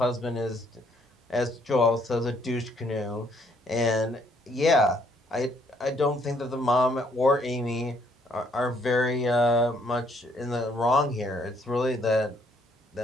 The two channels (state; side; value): normal; both; correlation 0.67